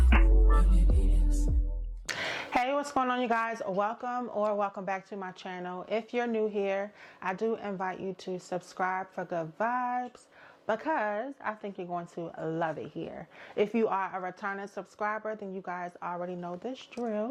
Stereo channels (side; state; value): both; identical; correlation 1.00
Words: what it is. Hey, what's going on, you guys? Welcome back to my channel. If you're new here, I do invite you to subscribe for good vibes, because I think you're going to love it here. If you are a returning subscriber, then you guys already know this